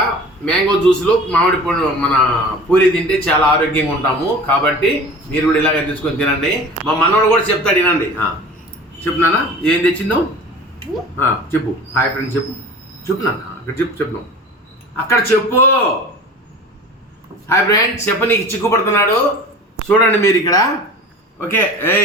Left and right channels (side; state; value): both; normal; correlation 0.39